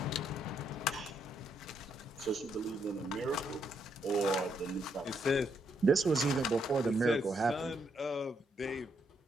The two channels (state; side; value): normal; both; correlation 0.76